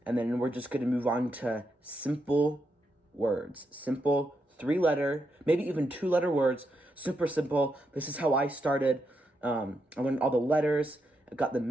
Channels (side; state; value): both; normal; correlation 0.82